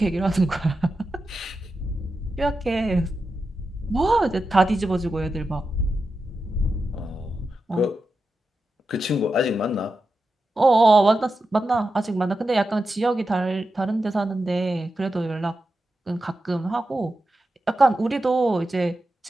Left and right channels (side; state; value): both; normal; correlation 0.90